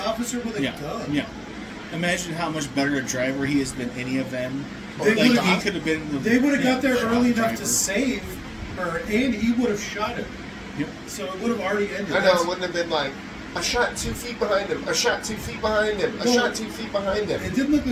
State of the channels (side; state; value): both; identical; correlation 1.00